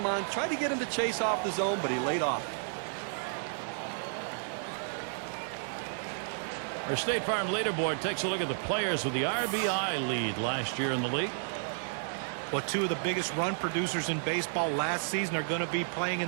on. Tried to get him to chase off the zone, but he laid off. Our State Farm leaderboard takes a look at the players with the RBI lead last year in the league. Well, 2 of the biggest run producers in baseball last season are going to be playing in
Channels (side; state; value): left; silent; digital silence